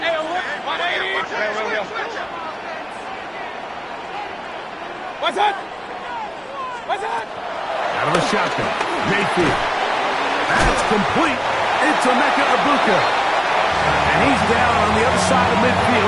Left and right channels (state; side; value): identical; both; correlation 1.00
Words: What's that? What's that? Out of the shotgun, Mayfield. That's complete. It's Emeka Egbuka. And he's down on the other side of